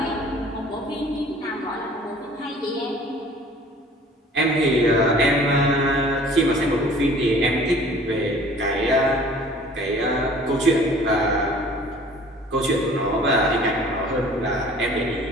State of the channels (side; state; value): both; normal; correlation 0.49